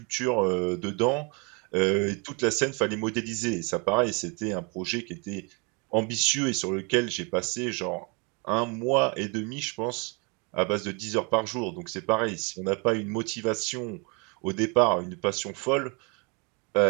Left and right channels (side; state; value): left; quieter; 32.2 dB